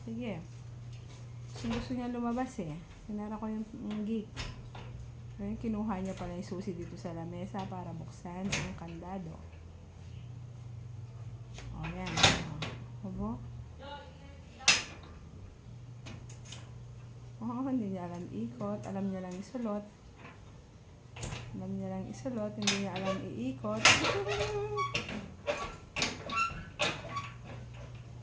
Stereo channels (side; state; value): both; identical; correlation 1.00